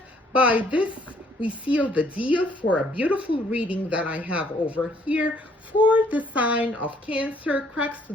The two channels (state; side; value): normal; both; correlation 0.64